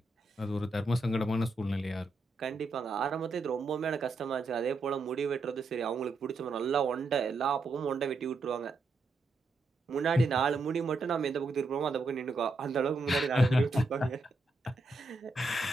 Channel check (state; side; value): quieter; left; 3.2 dB